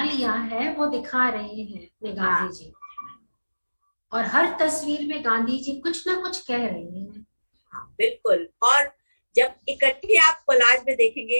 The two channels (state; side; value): inverted; both; correlation -1.00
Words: लिया है वो दिखा रहे हैं अपने गांधी जी, और हर तस्वीर में गांधी जी कुछ ना कुछ कह रहे हैं। बिल्कुल, और जब इकट्ठे आप कोलाज में